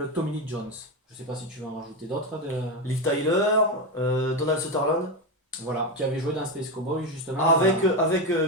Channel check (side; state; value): both; normal; correlation 0.13